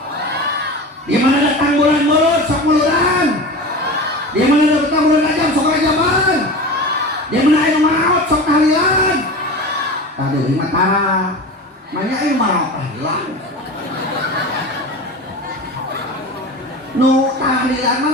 Di mana datang bulan mulut sok muluran. Di mana datang bulan rajab sok rajaban. Di mana aya nu maraot sok tahlilan. Tah deui mah tara. Manya aya maraot tahlilan. Nu tahlilan mah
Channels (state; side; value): normal; both; correlation 0.31